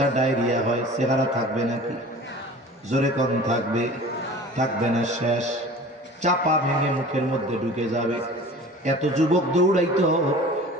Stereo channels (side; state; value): both; normal; correlation 0.42